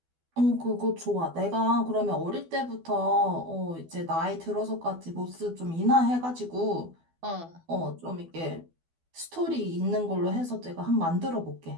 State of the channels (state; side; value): late; left; 12 ms